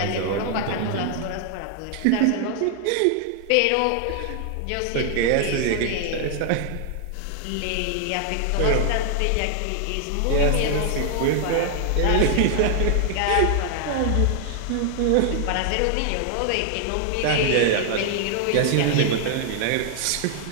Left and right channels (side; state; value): both; different; correlation 0.00